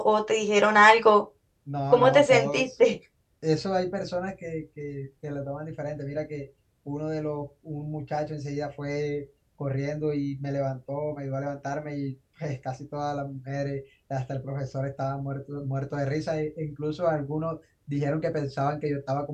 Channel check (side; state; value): both; identical; correlation 1.00